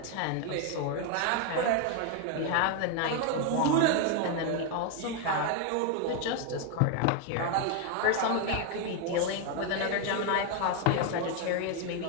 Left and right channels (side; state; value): both; different; correlation 0.01